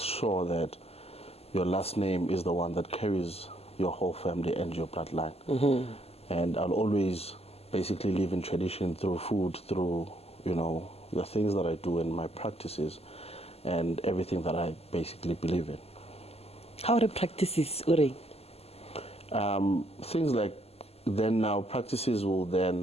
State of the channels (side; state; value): right; late; 0.29 ms